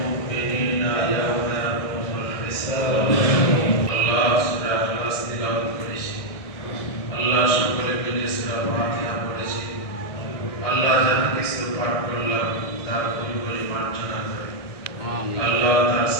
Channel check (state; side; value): late; right; 1.6 ms